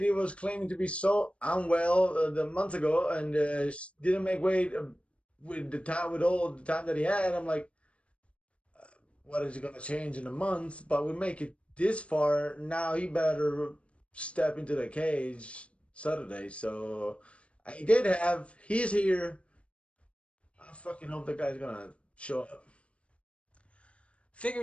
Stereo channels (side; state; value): right; late; 0.061 ms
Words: He was claiming to be so unwell the month ago, and didn't make weight with the time with all the time that he had. I'm like, what is it gonna change in a month? But we make it this far now. He better step into the cage Saturday. So I did have. He's here. I fucking hope the guy's gonna show up.